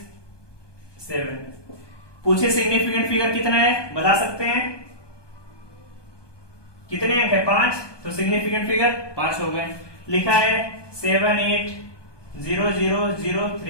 7, पूछे सिग्निफिकेंट फिगर कितना है, बता सकते हैं कितने अंक है, 5, तो सिग्निफिकेंट फिगर 5 हो गए। लिखा है 7 8 0 0 0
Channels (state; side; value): late; right; 1.2 ms